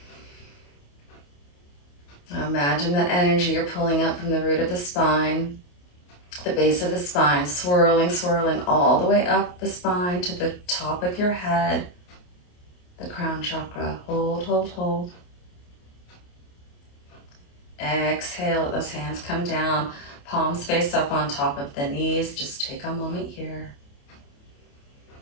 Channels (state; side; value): late; right; 28 ms